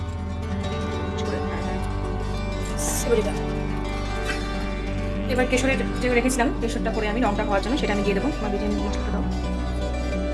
এবার কেশরের যে রেখেছিলাম, কেশরটা করে আমি রংটা হওয়ার জন্য সেটা আমি দিয়ে দেবো। আমার বিরিয়ানি মশলাটা দাও।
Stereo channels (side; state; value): both; identical; correlation 1.00